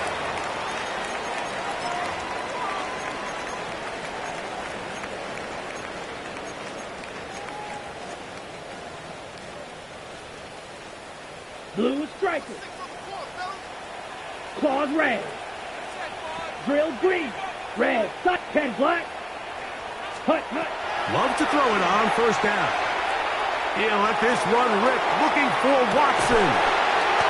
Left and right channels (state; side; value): identical; both; correlation 1.00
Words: Blue striker. Claws red. Drill green. Red. 10 black. Hut. Love to throw it on first down. He'll let this run rip, looking for Watson.